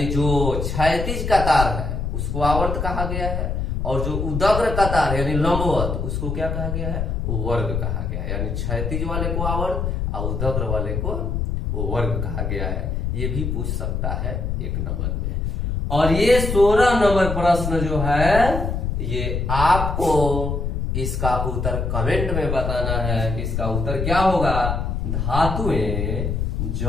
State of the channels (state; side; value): noise; left; rumble, 1 dB below the sound